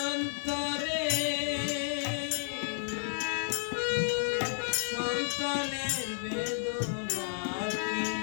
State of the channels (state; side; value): silent; right; digital silence